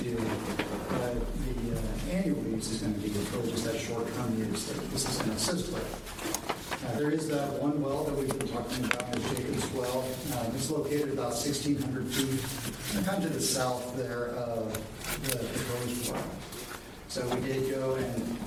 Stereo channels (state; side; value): identical; both; correlation 1.00